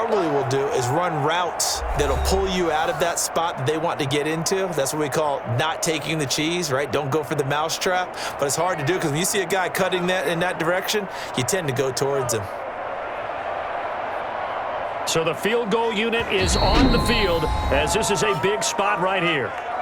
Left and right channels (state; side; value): identical; both; correlation 1.00